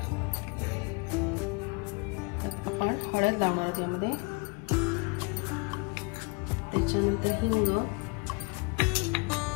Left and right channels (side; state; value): right; quieter; 32.6 dB